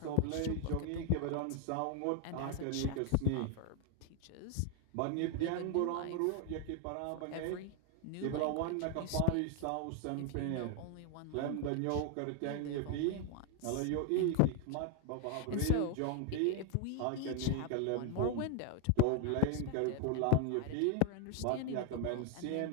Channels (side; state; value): both; different; correlation 0.01